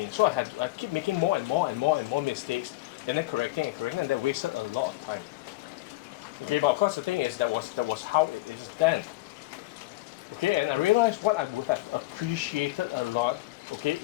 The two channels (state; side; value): quieter; right; 19.4 dB